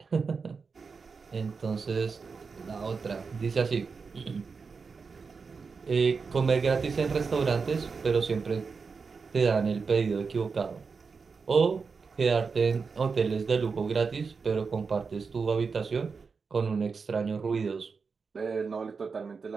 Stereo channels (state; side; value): quieter; left; 5.1 dB